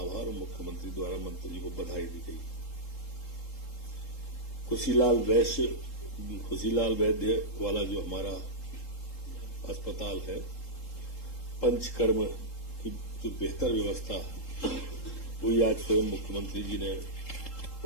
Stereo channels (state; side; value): late; right; 3.8 ms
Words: आभार और मुख्यमंत्री द्वारा मंत्री जी को बधाई दी गई। खुशीलाल वैद्य वाला जो हमारा अस्पताल है, पंचकर्म की जो बेहतर व्यवस्था है, वही आज स्वयं मुख्यमंत्री जी ने